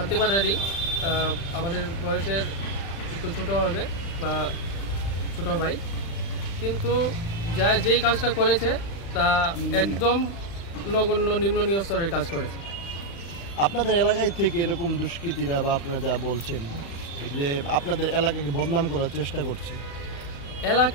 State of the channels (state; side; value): late; right; 35 ms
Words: আমাদের বয়সের একটু ছোট হবে বা ছোট ভাই, কিন্তু যেই কাজটা করেছে তা একদম নগণ্য নিম্ন স্তরের কাজ করেছে। আপনাদের এলাকায় থেকে এরকম দুষ্কৃতীরা বা আপনারা যা বলছেন যে আপনাদের এলাকাকে বদনাম করার চেষ্টা করছে,